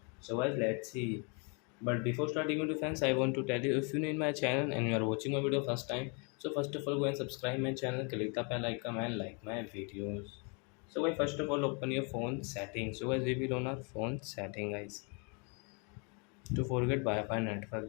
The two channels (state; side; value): quieter; right; 34.9 dB